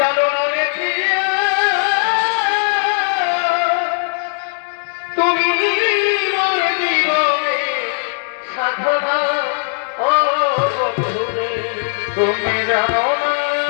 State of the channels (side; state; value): right; silent; digital silence